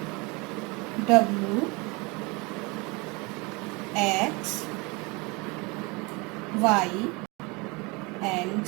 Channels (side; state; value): left; quieter; 26.8 dB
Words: W, X, Y and